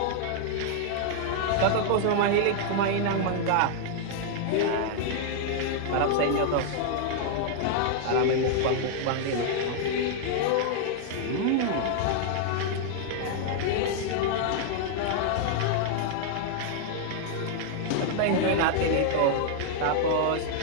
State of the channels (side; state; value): both; different; correlation -0.01